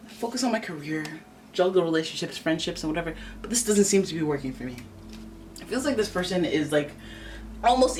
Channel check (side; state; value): both; identical; correlation 1.00